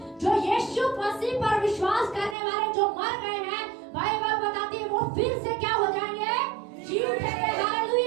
जो यीशु मसीह पर विश्वास करने वाले जो मर गए हैं, बाइबल बताती है वो फिर से क्या हो जाएंगे? जी उठेंगे।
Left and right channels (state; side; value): drops out; left; at 2.4 s